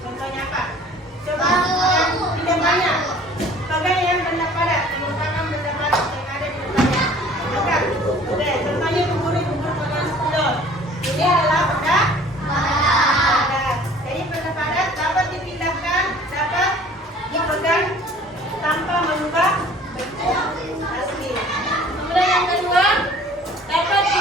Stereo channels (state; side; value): normal; both; correlation 0.50